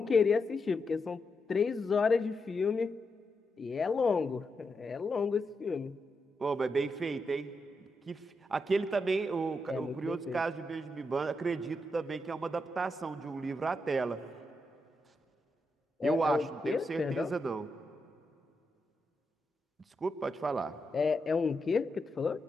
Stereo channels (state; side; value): normal; both; correlation 0.84